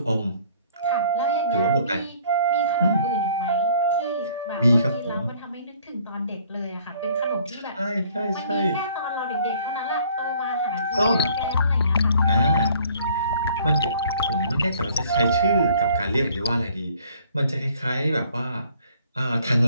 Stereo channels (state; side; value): inverted; both; correlation -0.58